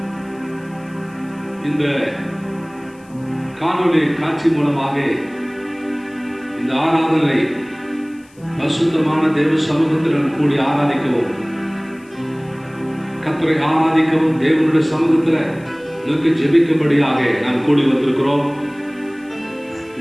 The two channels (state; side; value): noise; left; hiss, 30 dB below the sound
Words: இந்த காணொளி காட்சி மூலமாக இந்த ஆராதனை பரிசுத்தமான தேவ சமூகத்தில் கூடி ஆராதிக்கவும், கர்த்தரை ஆராதிக்கவும், தேவனுடைய சமூகத்தில் நோக்கி ஜெபிக்கும்படியாக நாம் கூடி வந்திருக்கிறோம்.